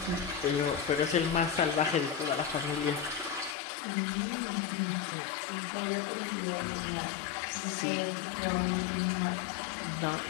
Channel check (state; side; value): drops out; right; at 3.6 s